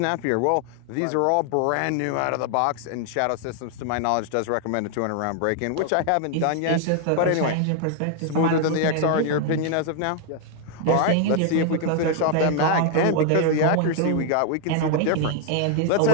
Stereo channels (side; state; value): both; different; correlation 0.00